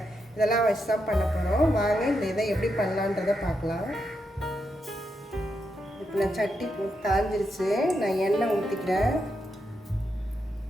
இதெல்லாம் வச்சு தான் பண்ண போகிறோம். வாங்க இந்த இதை எப்படி பண்ணலான்றதை பார்க்கலாம். இப்போ நான் சட்டி காஞ்சிருச்சு. நான் எண்ணெய் ஊற்றிக்கிறேன்.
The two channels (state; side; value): normal; both; correlation 0.83